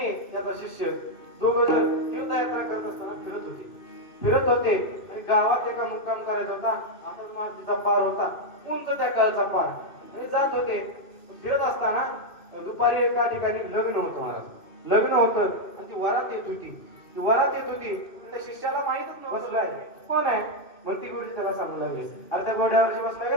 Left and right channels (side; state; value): right; late; 2.6 ms